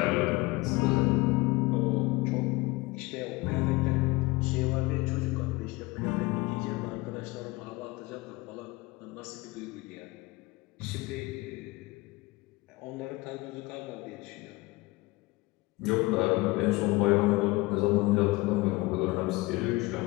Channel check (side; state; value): right; quieter; 22.3 dB